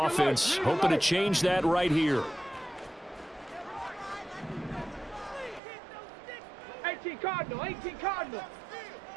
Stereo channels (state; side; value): drops out; left; at 5.6 s